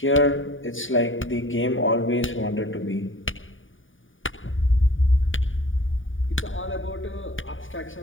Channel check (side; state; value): right; late; 0.57 ms